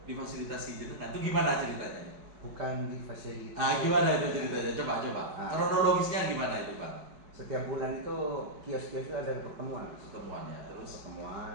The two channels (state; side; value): late; left; 4.9 ms